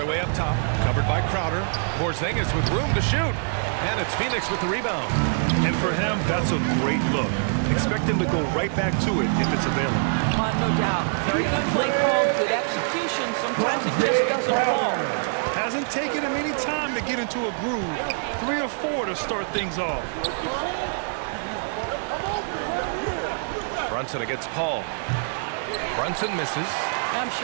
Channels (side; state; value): left; silent; digital silence